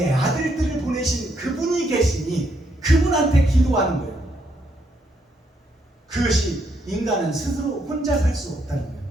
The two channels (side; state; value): both; normal; correlation 0.75